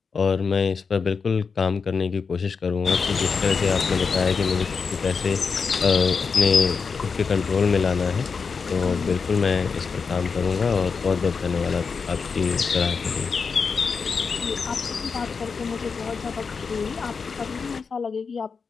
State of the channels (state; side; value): quieter; right; 5.3 dB